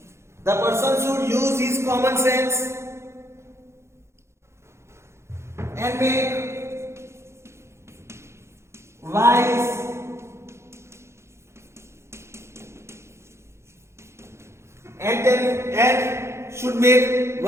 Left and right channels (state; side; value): late; left; 0.13 ms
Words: The person should use his common sense and make wise and should make